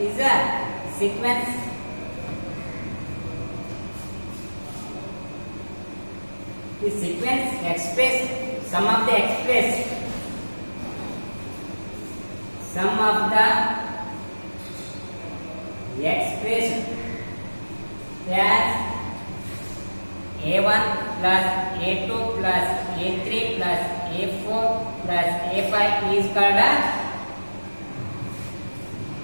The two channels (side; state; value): both; inverted; correlation -1.00